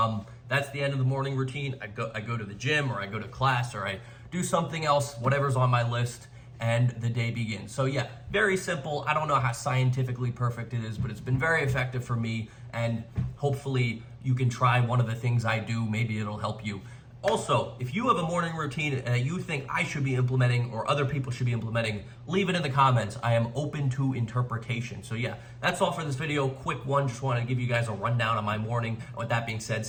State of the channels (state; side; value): identical; both; correlation 1.00